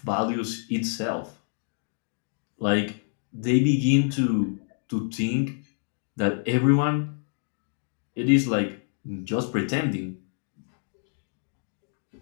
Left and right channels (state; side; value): silent; right; digital silence